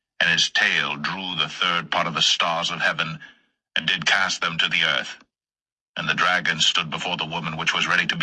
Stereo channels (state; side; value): identical; both; correlation 1.00